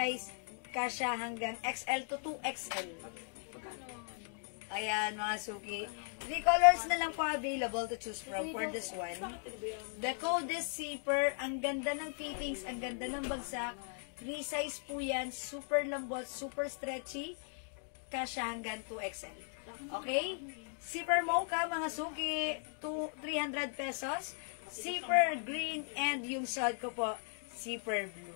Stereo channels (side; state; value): right; silent; 53 dB below the other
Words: Kasya hanggang XL to 2XL. Ayan, mga suki. 3 colors na lang po available to choose from for this one. The code is zipper. Ang ganda ng fittings, ang ganda ng bagsak. Free size po yan. Super lambot, super stretchy. Kasya hanggang 2XL. Okay? Zipper mocha, mga suki, 300 pesos. Zipper green, and yung suot ko po, zipper blue.